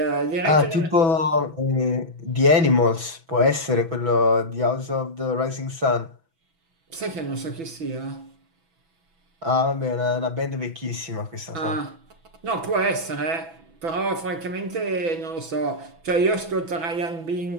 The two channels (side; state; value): left; late; 6.1 ms